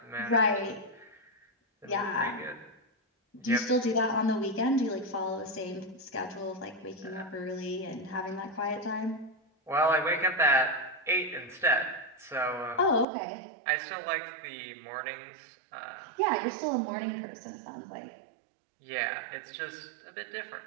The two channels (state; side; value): drops out; left; at 13.1 s